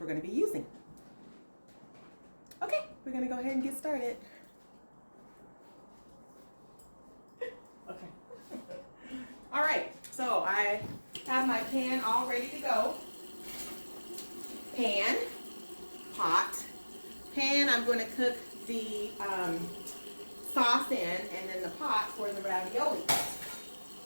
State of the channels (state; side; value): inverted; both; correlation -1.00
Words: going to be using. Okay, we're going to go ahead and get started. Okay. All right, so I have my pan all ready to go. Pan, pot. Pan, I'm going to cook the sauce in, and then the pot for the ravioli.